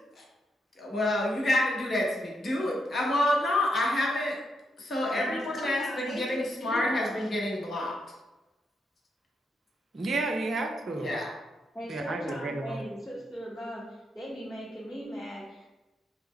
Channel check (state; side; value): normal; both; correlation 0.80